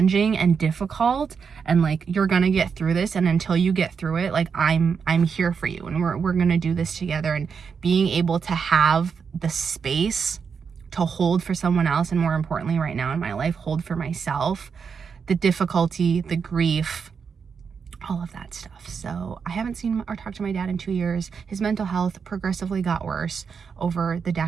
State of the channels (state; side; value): quieter; left; 6.1 dB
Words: and difficult, and like, you're gonna get through this, and until you get through it, like, I'm here for you, and we're gonna do this together. And being able to have the space to hold for someone else, and more importantly right now in my life, hold for myself, the difficulty, the grief, all of that stuff. So I haven't seen or talked to my dad in 2 years. His mental health progressively got worse over the